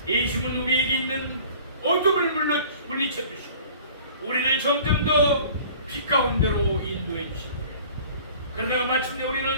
예수님은 우리에게 있는 어둠을 물리쳐 주시고 우리를 점점 더 빛 가운데로 인도해 주십니다. 그러다가 마침내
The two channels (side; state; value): both; inverted; correlation -0.48